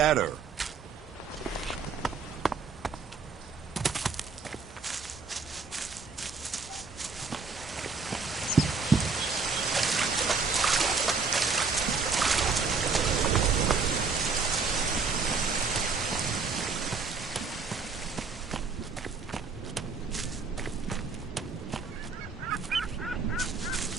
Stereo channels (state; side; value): quieter; left; 4.7 dB